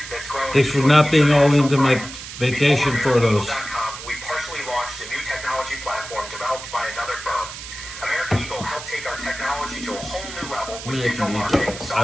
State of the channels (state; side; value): noise; right; hiss, 11 dB below the sound